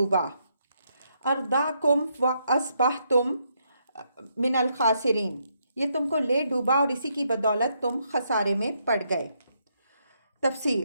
ارداکم وَأَصْبَحْتُمْ مِنَ الْخَاسِرِينَ، یہ تم کو لے ڈوبا اور اسی کی بدولت تم خسارے میں پڑ گئے۔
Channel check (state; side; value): inverted; both; correlation -0.76